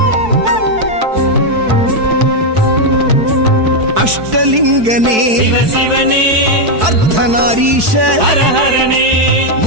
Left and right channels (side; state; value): left; late; 4.6 ms